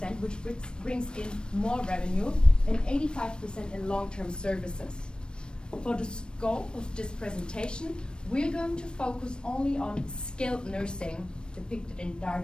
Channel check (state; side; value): late; right; 0.053 ms